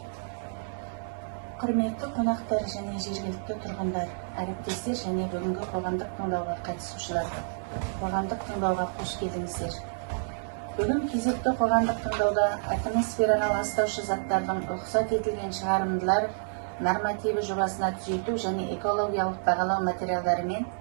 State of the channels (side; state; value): left; silent; 59 dB below the other